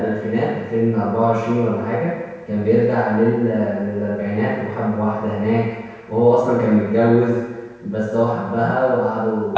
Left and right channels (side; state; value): both; identical; correlation 1.00